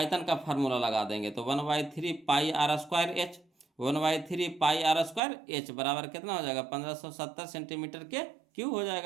का फार्मूला लगा देंगे तो 1/3 pi r square h, 1/3 pi r square h बराबर कितना हो जाएगा, 1570 सेंटीमीटर के क्यू हो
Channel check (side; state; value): left; drops out; at 5.2 s